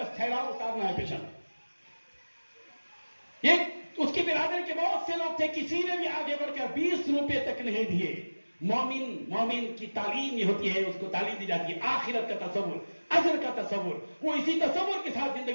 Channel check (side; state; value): both; inverted; correlation -1.00